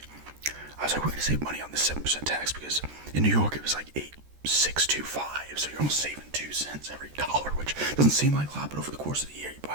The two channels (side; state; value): left; late; 14 ms